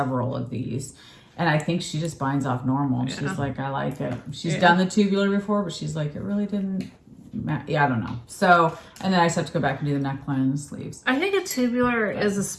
of these. And I think she just binds off normal. Yeah. She's like, I like it. She's done the tubular before, but she's like, it really didn't matter. Yeah, I don't know. So, and then I just have to go back and do the neckline and the sleeves. I think a tubular is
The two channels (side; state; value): both; identical; correlation 1.00